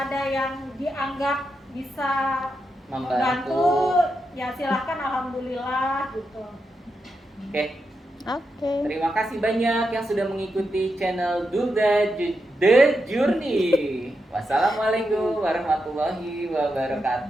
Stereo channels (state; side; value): normal; both; correlation 0.86